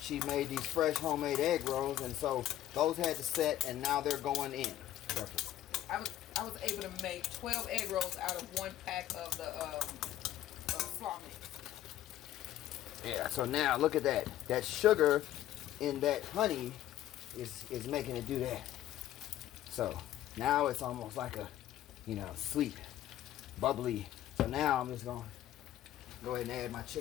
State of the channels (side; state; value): right; quieter; 12.9 dB